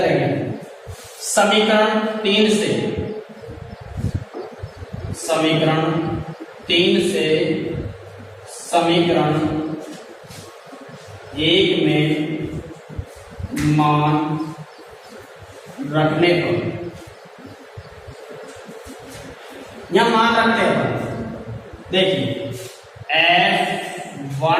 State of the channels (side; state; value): both; identical; correlation 1.00